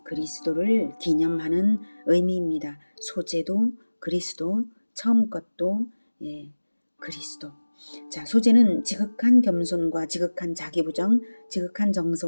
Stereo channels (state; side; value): inverted; both; correlation -1.00